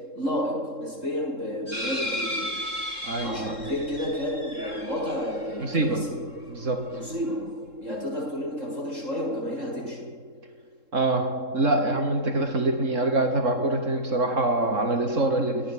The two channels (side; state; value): left; late; 3.7 ms